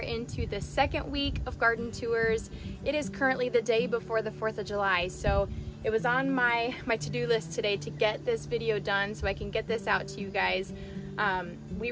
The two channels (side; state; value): both; identical; correlation 1.00